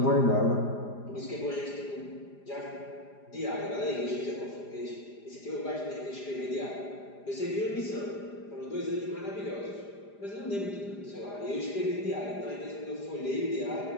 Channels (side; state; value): right; late; 4.9 ms